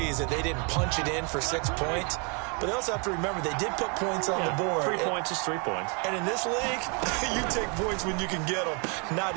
that they didn't punch it in for 6 points. But they also have to remember they did put points on the board. 3 points is 3 points. And in this league, you take points when you can get them. Not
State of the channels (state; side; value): quieter; left; 34.6 dB